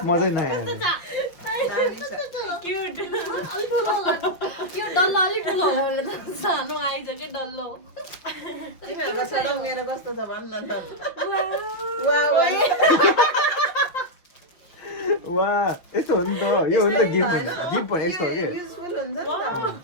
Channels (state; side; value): late; right; 5.9 ms